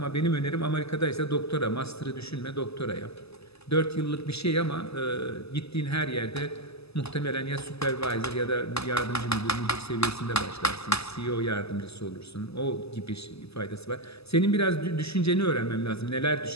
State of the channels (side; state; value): right; late; 0.79 ms